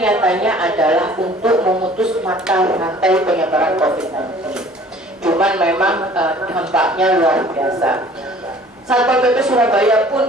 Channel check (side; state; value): both; normal; correlation 0.51